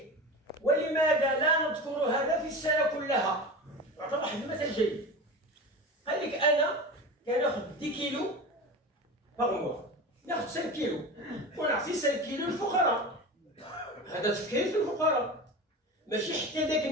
ولماذا لا نذكر هذا في السنه كلها؟ يعطي واحد المثل جيد. قال لك: انا كناخذ 10 كيلو باغ، ناخذ 5 كيلو ونعطي 5 كيلو للفقراء. هذا تفكير في الفقراء، ماشي حتى ذاك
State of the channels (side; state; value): both; normal; correlation 0.29